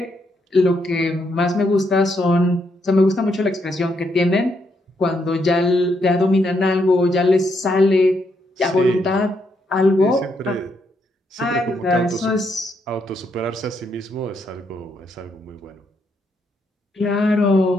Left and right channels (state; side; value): normal; both; correlation 0.77